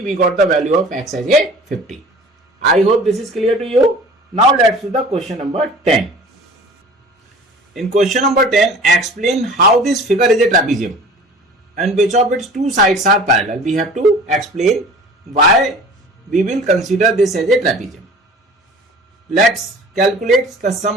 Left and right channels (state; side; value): normal; both; correlation 0.43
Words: we got the value of X as a 50. I hope this is clear to you. Now let's do the question number 10. In question number 10, explain how this figure is a trapezium and which of its two sides are parallel. We have to explain why we will consider this as a trapezium. Let's calculate the